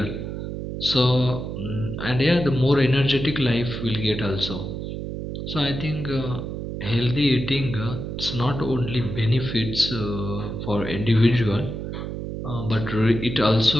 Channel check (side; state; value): right; noise; hum, 6 dB below the sound